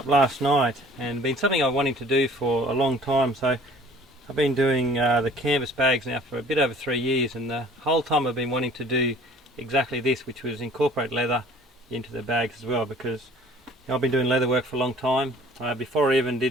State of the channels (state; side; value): normal; both; correlation 0.50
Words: last night, and been something I've wanting to do for a long time. So I've been doing the canvas bags now for a bit over 3 years, and the whole time I've been wanting to do exactly this, which was incorporate leather into the bags as well, because I've been doing leather work for a long time. Before I even